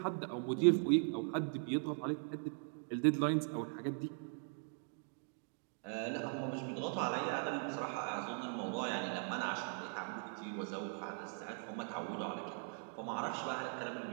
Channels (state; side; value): silent; left; 51 dB below the other